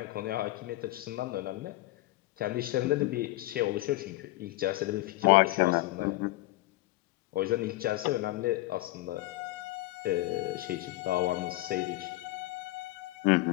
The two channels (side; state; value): right; quieter; 18.2 dB